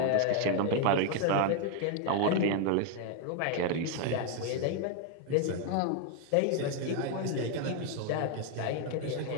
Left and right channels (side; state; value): both; different; correlation 0.01